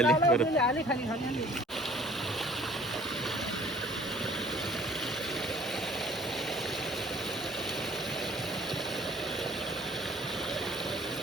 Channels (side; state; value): both; normal; correlation 0.54